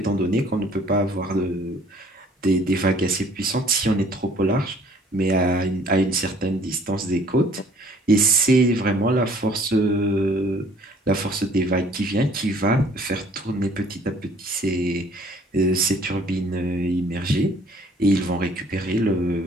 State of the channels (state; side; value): normal; both; correlation 0.56